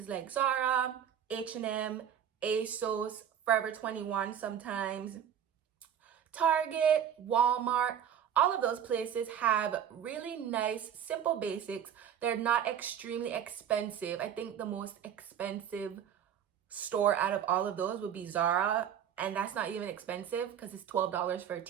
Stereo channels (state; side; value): quieter; left; 9.0 dB